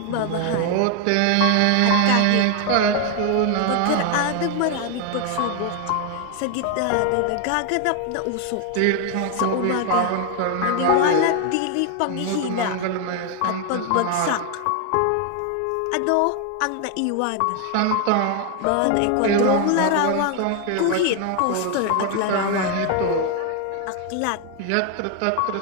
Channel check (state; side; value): different; both; correlation 0.01